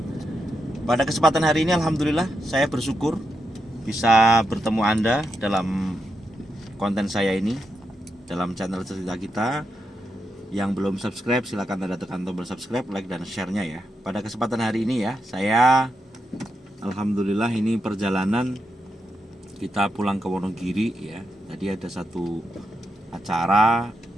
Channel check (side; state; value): both; normal; correlation 0.85